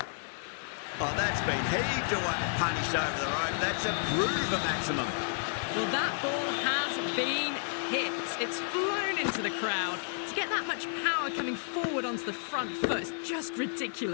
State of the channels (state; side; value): silent; right; 57 dB below the other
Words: Oh, that's been heaved away and punished over the rope. That's a Bruver maximum. Well, that ball has been hit. It's flown into the crowd. To get that much power coming forward onto the front foot is just